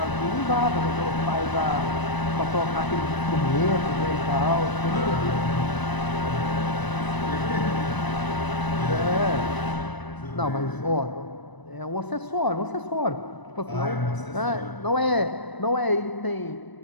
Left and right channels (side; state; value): right; late; 1.0 ms